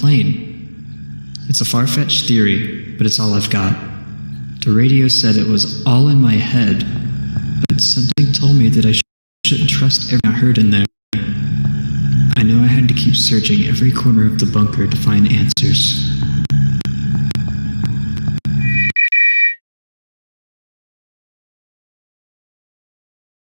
It's a far-fetched theory, but it's all I've got. The radio said it was all in my head, but something told me that I shouldn't trust everything I heard in there. I knew I had to keep searching every corner of the bunker to find answers.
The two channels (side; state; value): both; inverted; correlation -1.00